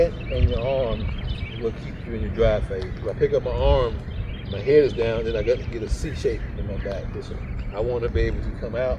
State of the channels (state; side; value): identical; both; correlation 1.00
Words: and your arm will keep you in your drive phase. If I pick up my arm, my head is down, then I got to get a C shape in my back. Listen, I want to be able to come out